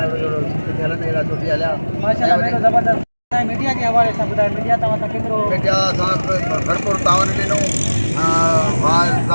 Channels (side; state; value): both; inverted; correlation -1.00